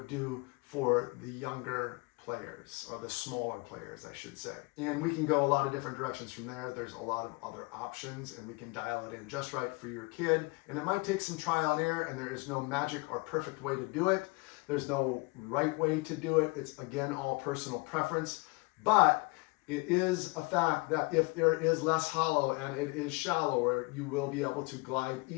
do for the younger players, or the smaller players, I should say. And we can go a lot of different directions from there. There's a lot of other options, and we can dial it in just right for your kid. And it might take some trial and error, and there is no magic or perfect way to do it. There's no right way to do it. It's, again, all personal preference. But it is a fact that if there is less hollow and it is shallower, you will be able to glide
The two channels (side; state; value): right; quieter; 27.0 dB